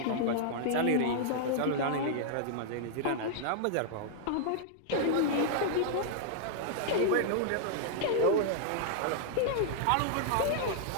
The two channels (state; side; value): different; both; correlation -0.01